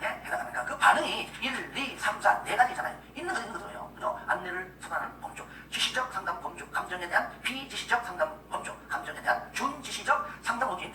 해당합니까? 그 반응이 1, 2, 3, 4, 네 가지잖아요. 있는 거예요. 그죠? 안내를 수단하는 범주, 지시적 상담 범주, 감정에 대한 비지시적 상담 범주, 감정에 대한 준지시적 상담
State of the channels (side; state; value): both; identical; correlation 1.00